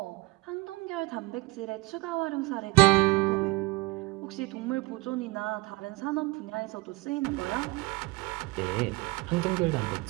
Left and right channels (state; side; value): quieter; left; 23.2 dB